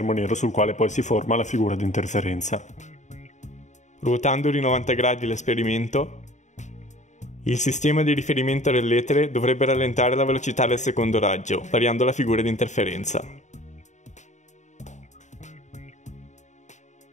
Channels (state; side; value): late; right; 0.34 ms